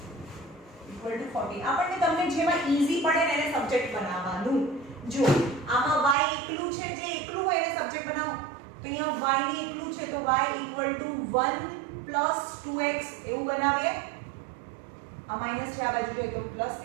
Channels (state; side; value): drops out; left; at 6.2 s